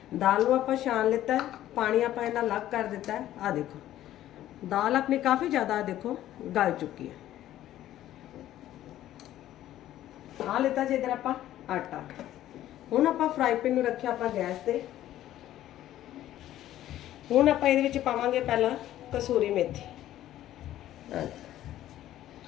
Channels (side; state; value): right; quieter; 13.2 dB